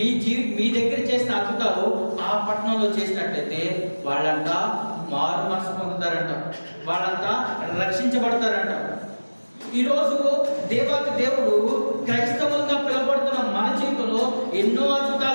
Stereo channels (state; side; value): inverted; both; correlation -1.00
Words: దగ్గర చేసిన అద్భుతాలు ఆ పట్టణంలో చేసినట్లయితే వాళ్ళంతా మారు మనసు పొందుతారంట, వాళ్ళంతా రక్షించబడతారంట. ఈరోజు దేవాతి దేవుడు క్రైస్తవులుగా పిలువబడుతున్న మన జీవితంలో ఎన్నో